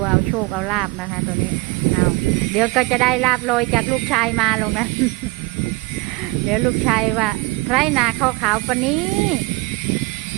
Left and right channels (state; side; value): quieter; left; 23.7 dB